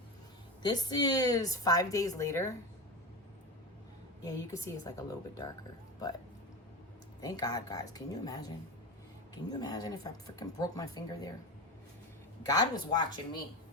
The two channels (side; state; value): both; normal; correlation 0.22